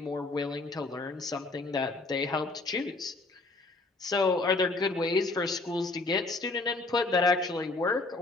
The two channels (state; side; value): quieter; right; 3.3 dB